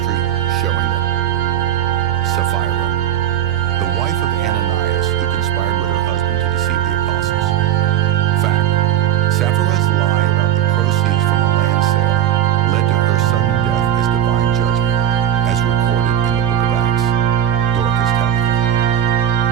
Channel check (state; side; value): quieter; left; 10.3 dB